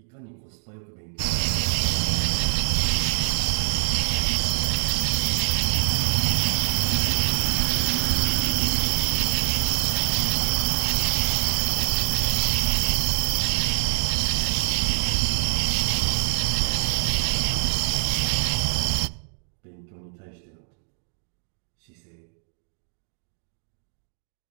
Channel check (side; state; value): left; silent; digital silence